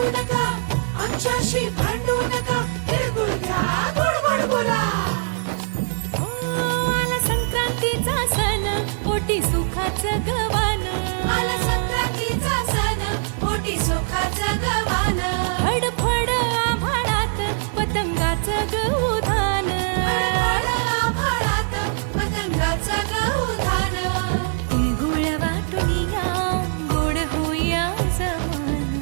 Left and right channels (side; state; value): left; silent; 57 dB below the other